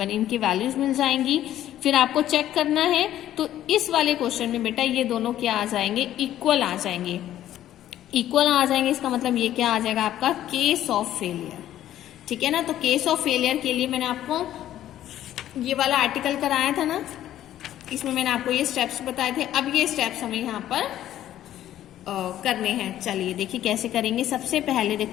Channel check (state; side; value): quieter; right; 12.4 dB